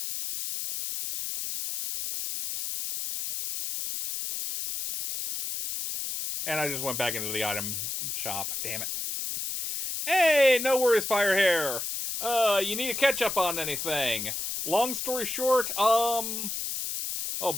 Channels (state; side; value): noise; left; hiss, 4 dB below the sound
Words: And I just went back into the item shop. Damn it. Hey, no worries, Firehair. You need to catch up on anything. Long story short, we are